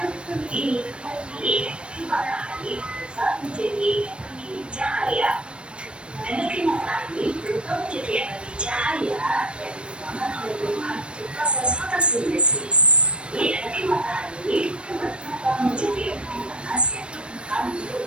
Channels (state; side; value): late; left; 0.057 ms